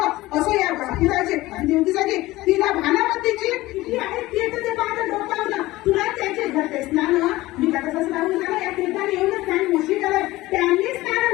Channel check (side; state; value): right; quieter; 18.3 dB